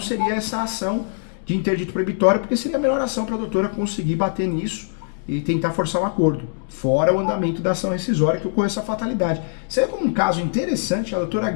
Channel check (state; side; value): silent; right; digital silence